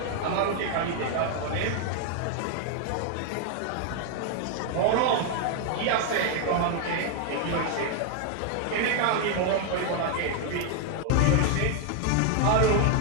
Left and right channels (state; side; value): different; both; correlation 0.00